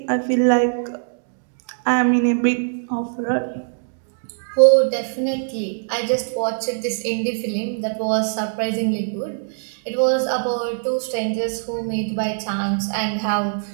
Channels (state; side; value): silent; left; digital silence